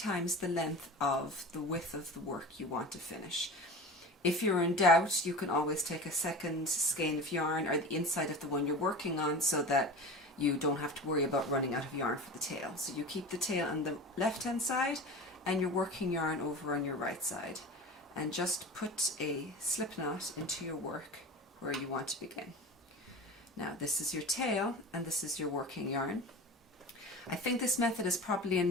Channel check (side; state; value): both; normal; correlation 0.32